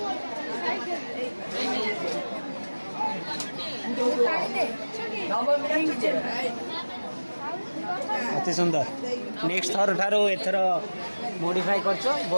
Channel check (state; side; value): inverted; both; correlation -1.00